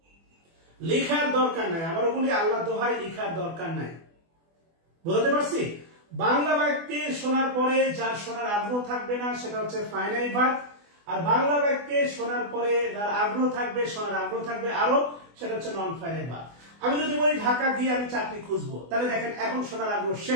লিখার দরকার নাই, আবারও বলি, আল্লাহর দোহাই লিখার দরকার নাই। বুঝতে পারছি? বাংলা বাক্যে শোনার পরে যার শোনার আগ্রহ থাকবে না, সেটা হচ্ছে ফাইনাইট ভাগ। আর বাংলা বাক্যে শোনার পরে যার আগ্রহ থাকবে, শোনার আগ্রহ থাকবে আরো, সেটা হচ্ছে নন ফাইনাইট ভাগ। আমি যদি বলি ঢাকা গিয়ে আমি চাকরি খুঁজবো, তাহলে দেখেন এখন শোনার আগ্রহ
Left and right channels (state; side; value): late; left; 24 ms